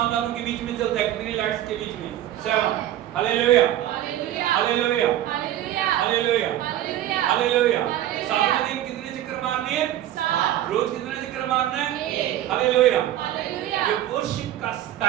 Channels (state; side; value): quieter; left; 12.8 dB